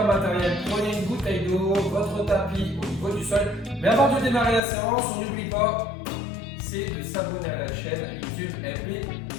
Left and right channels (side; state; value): right; drops out; at 4.6 s